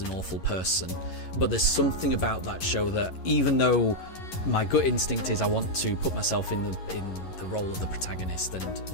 an awful person. But there's something about that show that, even though my gut instinct is I want to put myself in the role of the protagonist and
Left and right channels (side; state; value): right; late; 11 ms